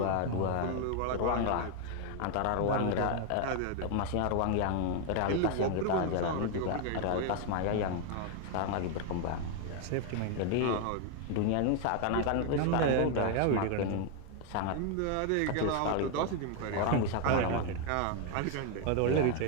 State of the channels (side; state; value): both; different; correlation 0.00